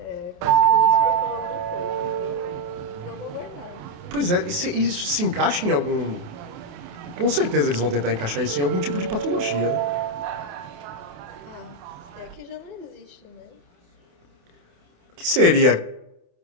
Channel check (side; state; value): left; late; 28 ms